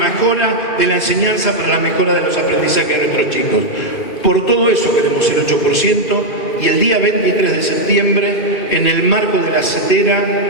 de la enseñanza para la mejora de los aprendizajes de nuestros chicos. Por todo eso queremos el 8% y el día 23 de septiembre, en el marco de la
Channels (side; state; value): right; late; 2.5 ms